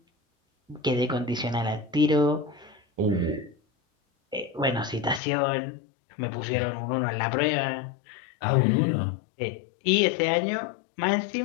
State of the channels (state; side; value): drops out; right; at 5.2 s